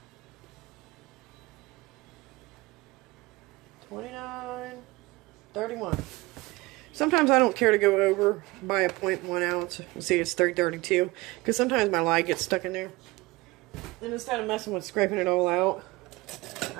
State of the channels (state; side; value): quieter; left; 21.7 dB